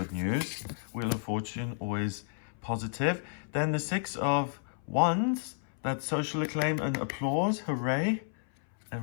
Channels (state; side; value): silent; right; 57 dB below the other